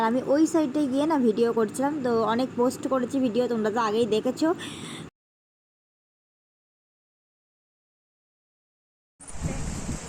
আমি ওই সাইডে গিয়ে না ভিডিও করছিলাম, তো অনেক পোস্ট করেছি ভিডিও, তোমরা তো আগেই দেখেছো।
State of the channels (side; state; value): both; identical; correlation 1.00